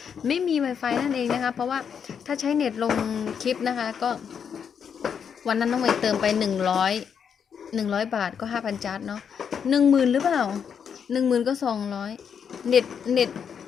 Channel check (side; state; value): right; quieter; 7.3 dB